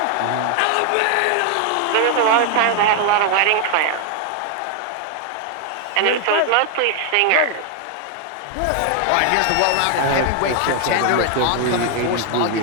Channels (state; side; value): different; both; correlation 0.00